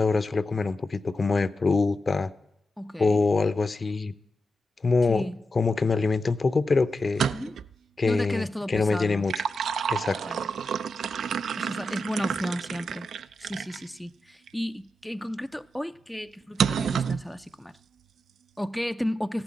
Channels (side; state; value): both; normal; correlation 0.89